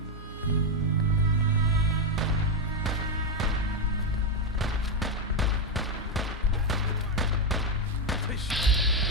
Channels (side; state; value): both; normal; correlation 0.06